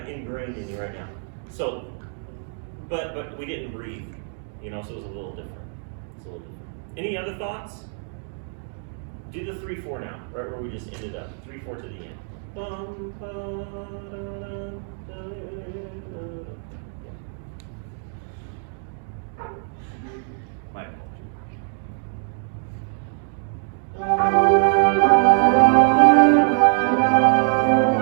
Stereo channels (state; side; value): silent; left; 60 dB below the other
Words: ingrained in you right now. So, but we didn't breathe, so it was a little different. It's a little different. Any other thoughts? Do the 3/4 now, right where we just ended up. 3/4 to the end. Bum, ba, da, da, da, da. My apologies.